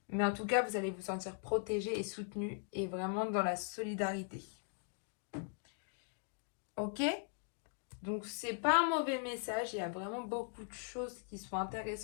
Mais en tout cas, vous allez vous sentir protégé et soutenu et vraiment dans la solidarité. Ok? Donc, c'est pas un mauvais message. Il y a vraiment beaucoup de choses qui sont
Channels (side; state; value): right; silent; 51 dB below the other